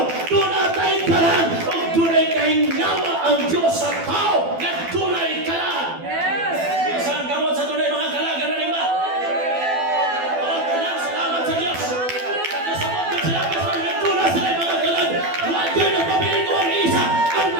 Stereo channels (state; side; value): late; left; 12 ms